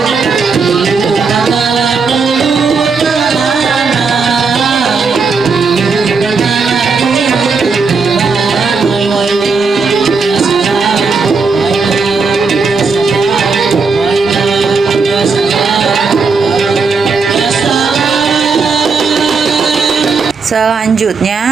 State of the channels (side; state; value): left; quieter; 4.8 dB